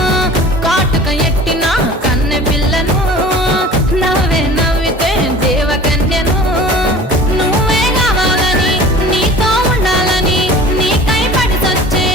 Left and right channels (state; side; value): normal; both; correlation 0.42